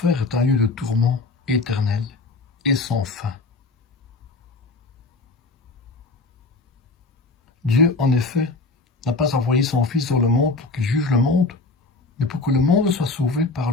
est un lieu de tourment éternel et sans fin. Dieu, en effet, n'a pas envoyé son Fils dans le monde pour qu'il juge le monde, mais pour que le monde soit sauvé par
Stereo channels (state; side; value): quieter; right; 3.5 dB